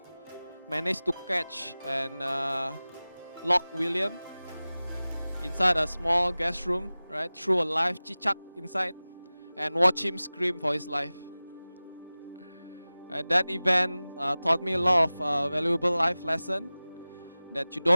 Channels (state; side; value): inverted; both; correlation -0.98